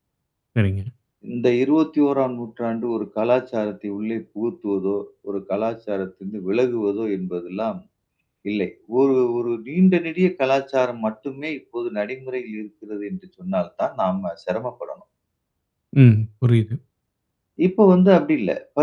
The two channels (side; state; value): both; identical; correlation 1.00